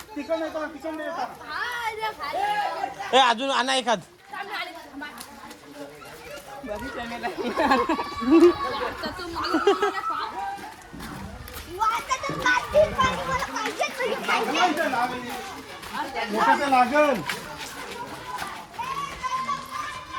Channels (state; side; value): identical; both; correlation 1.00